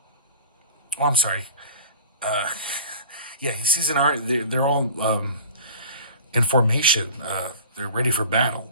sorry. He sees an army. They're all in formation. They're ready for battle.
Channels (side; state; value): both; inverted; correlation -0.42